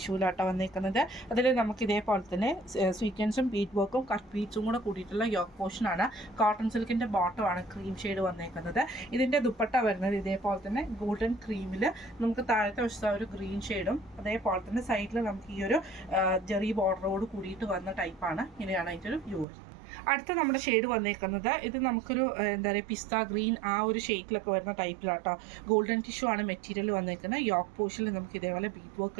വന്നേക്കുന്നത്. അതിൽ നമുക്ക് ഇതേപോലെ തന്നെ സ്വീക്വൻസും ബീഡ് വർക്കും കട്ട് ബീഡ്സും കൂടെ കൂടിയിട്ടുള്ള യോക്ക് പോർഷനാണ്. കോട്ടൺ സിൽക്കിൻ്റെ ബോട്ടമാണ് ക്രീം ഷെയ്ഡ് വന്നേക്കുന്നത്. ഇതിൻ്റെ ദുപ്പട്ട വരുന്നത് ഇതേപോലെ തന്നെ ഗോൾഡൻ ക്രീമിൽ നമുക്ക് താഴത്തെ വശത്ത് ഒരു ഗ്രീൻ ഷെയ്ഡും അതേപോലെ തന്നെ സൈഡിൽ നമുക്ക് ഈ ഒരു ജെറി ബോർഡറോട് കൂടിയിട്ട് വന്ന ടൈപ്പാണ്. ഇങ്ങനെയാണ് അതിൻ്റെ ഒരു വ്യൂ. അടുത്ത നമ്മുടെ ഷെയ്ഡ് വന്നേക്കുന്നത് ഇത് നമുക്കൊരു എന്താ പറയുക പിസ്ത ഗ്രീൻ ആ ഒരു ഷെയ്ഡിലൊക്കെ വരുന്ന ടൈപ്പിലാട്ടോ. ഗോൾഡൻ ടിഷ്യൂ ആണ് മെറ്റീരിയൽ വന്നേക്കുന്നത്. യോക്ക് പോർഷനിൽ നമുക്ക് ഇതേപോലെ ബീഡ് വർക്ക്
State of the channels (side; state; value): left; drops out; at 19.5 s